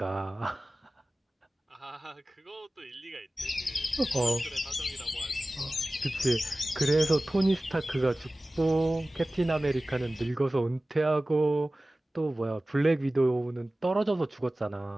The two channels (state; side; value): normal; both; correlation 0.97